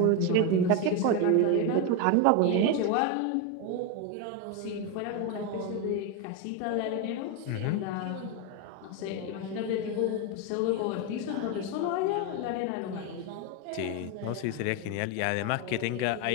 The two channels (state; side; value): different; both; correlation 0.02